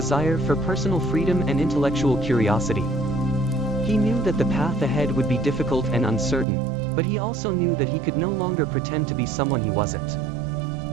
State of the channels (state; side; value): drops out; left; at 6.5 s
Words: for personal freedom and intellectual curiosity. He knew that the path ahead would be difficult and uncertain, but he also knew that he could no longer pretend to be someone he wasn't.